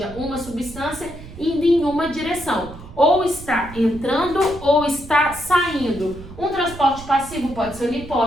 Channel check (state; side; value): noise; right; rumble, 15 dB below the sound